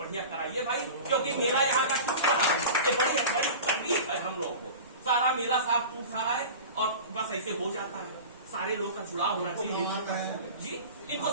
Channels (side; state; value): both; inverted; correlation -0.34